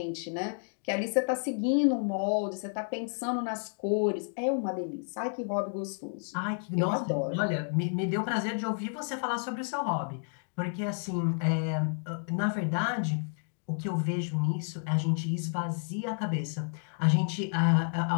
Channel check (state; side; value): silent; right; 57 dB below the other